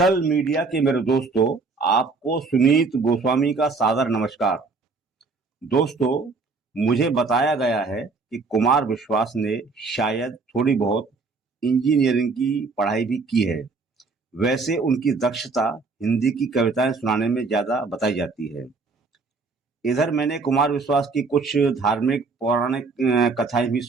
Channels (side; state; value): left; quieter; 4.2 dB